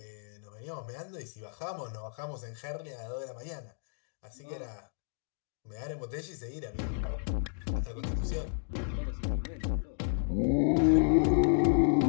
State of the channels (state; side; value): silent; right; digital silence